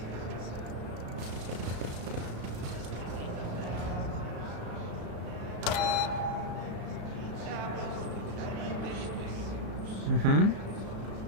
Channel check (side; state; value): left; late; 35 ms